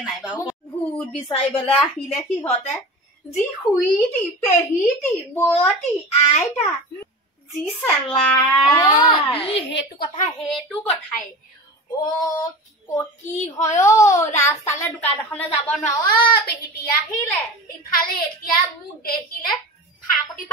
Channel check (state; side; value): normal; both; correlation 0.32